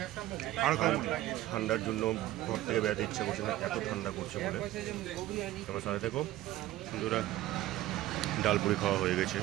আর ঠান্ডার জন্য ঘর থেকে বেড়াতে ইচ্ছা করছে না, এত ঠান্ডা করছে বলে। তোমার সাথে দেখো বন্ধুরা, ডালপুরি খাওয়া হয়ে গেছে।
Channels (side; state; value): left; quieter; 15.3 dB